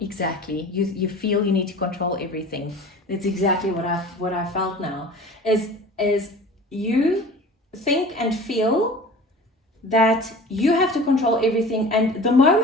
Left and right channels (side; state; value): both; normal; correlation 0.40